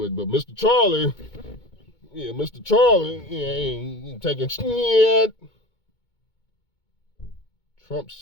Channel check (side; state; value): right; late; 2.2 ms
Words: Mr. Charlie, he ain't taking shit. Trump